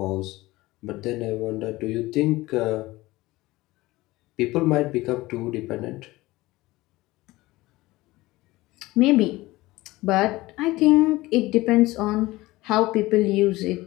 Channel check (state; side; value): quieter; right; 19.3 dB